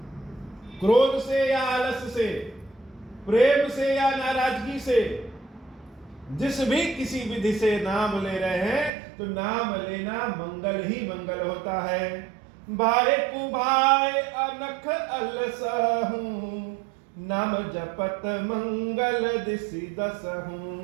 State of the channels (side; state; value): left; drops out; at 8.9 s